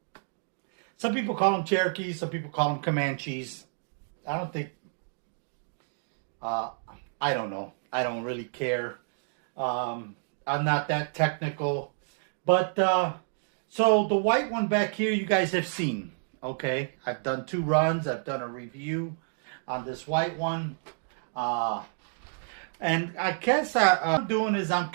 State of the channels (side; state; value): left; silent; digital silence